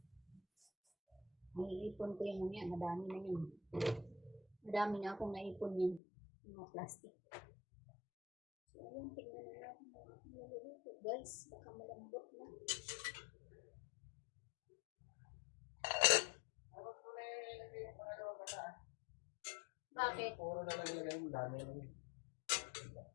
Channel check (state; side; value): drops out; right; at 6.0 s